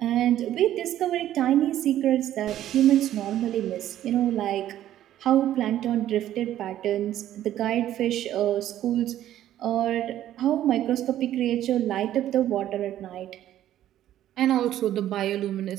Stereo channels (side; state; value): left; quieter; 12.3 dB